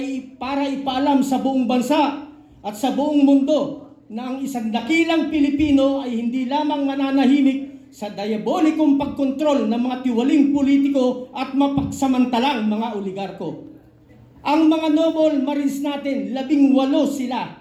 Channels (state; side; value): identical; both; correlation 1.00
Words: para ipaalam sa buong bansa at sa buong mundo na ang isang dakilang Pilipino ay hindi lamang mananahimik sa diabolikong pagkontrol ng mga tiwaling politiko at mapagsamantalang mga oligarko. Ang mga noble marines natin, 18